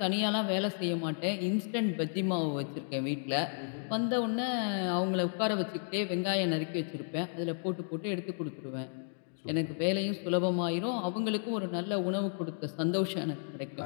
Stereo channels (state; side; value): silent; right; digital silence